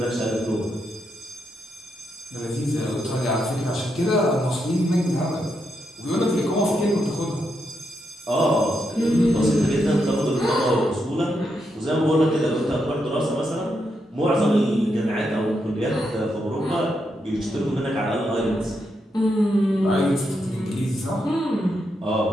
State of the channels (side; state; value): both; normal; correlation 0.82